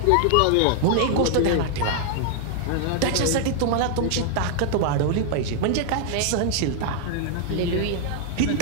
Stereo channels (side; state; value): both; different; correlation 0.00